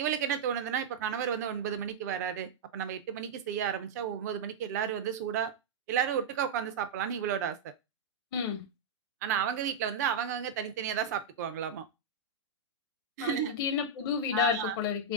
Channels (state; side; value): quieter; left; 4.0 dB